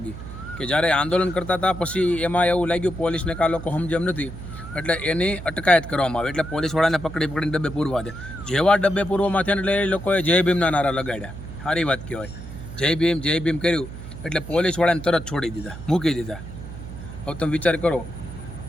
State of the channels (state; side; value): noise; right; hum, 12 dB below the sound